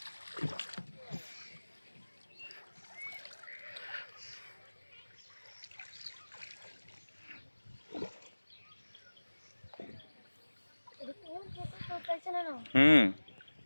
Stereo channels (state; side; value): inverted; both; correlation -1.00